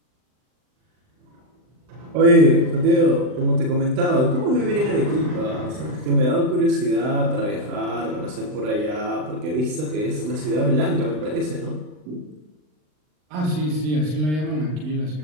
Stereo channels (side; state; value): left; late; 39 ms